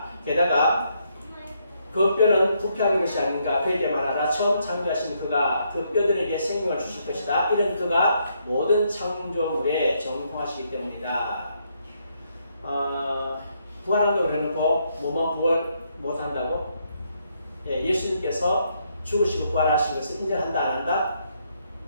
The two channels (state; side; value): inverted; both; correlation -0.75